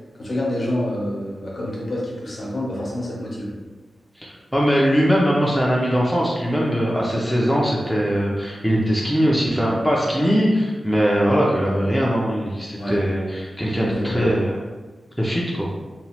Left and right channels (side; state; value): both; normal; correlation 0.94